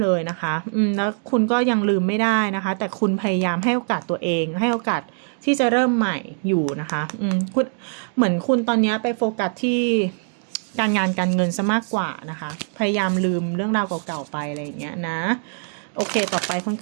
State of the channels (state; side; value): silent; left; 61 dB below the other